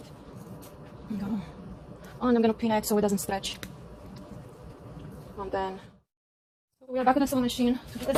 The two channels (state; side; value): identical; both; correlation 1.00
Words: And I'm gonna pin it so it doesn't stretch. And then we are back at the sewing machine to do the